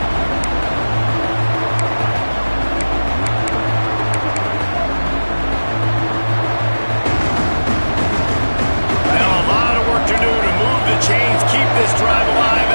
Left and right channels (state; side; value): inverted; both; correlation -1.00